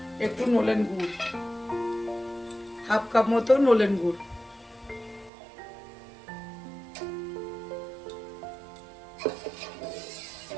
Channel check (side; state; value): left; drops out; at 5.3 s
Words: একটু নলেন গুড়, হাফ কাপ মতো নলেন গুড়।